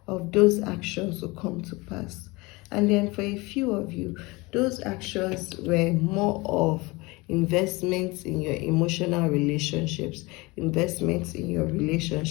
of those actions to come to pass. And then for a few of you, those actions were more of investments in your emotional relationships, investments in your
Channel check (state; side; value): quieter; right; 24.0 dB